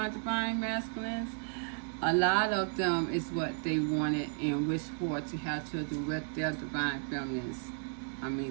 divine masculines. A lot of them is what they wanted and wished for, to have children with their divine feminists. I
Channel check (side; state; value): left; silent; 55 dB below the other